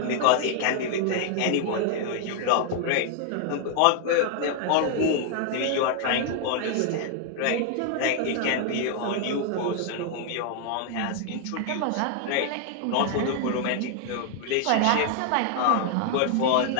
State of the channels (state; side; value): different; both; correlation 0.00